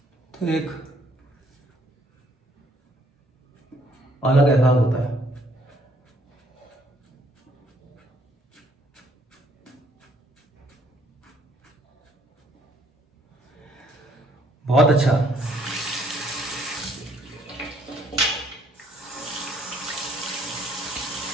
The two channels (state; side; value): normal; both; correlation 0.66